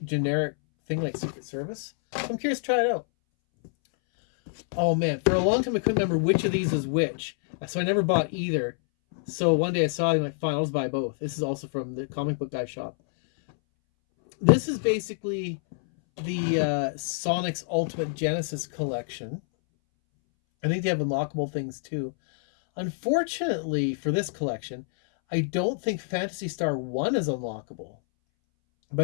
generic thing like Secret Service. So I'm curious to try it out. Oh man, for a long time I couldn't remember which of these is which, so I never bought either. So one day I saw it and I'm like, fine, I'll just buy both. This is also from the comic book guy shop. This is basically the Sonic's Ultimate Genesis collection. I think they have unlockable things too. Unfortunately for this collection, I don't think Phantasy Star 1 is unlockable.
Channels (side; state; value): right; silent; 60 dB below the other